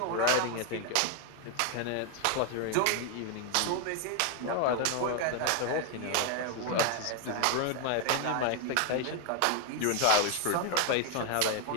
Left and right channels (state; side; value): different; both; correlation 0.01